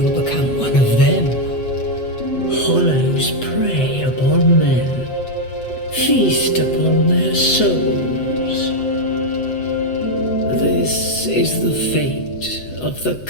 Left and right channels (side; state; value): right; late; 8.0 ms